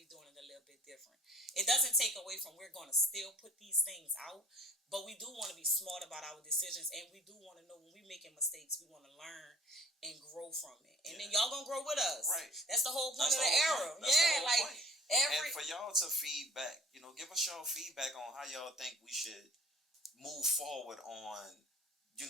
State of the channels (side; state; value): both; normal; correlation 0.49